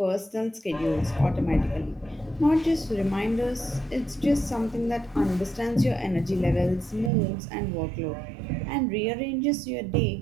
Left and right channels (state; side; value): drops out; left; at 7.1 s